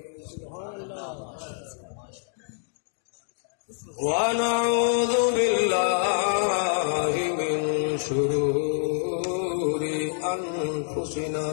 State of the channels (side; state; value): right; silent; digital silence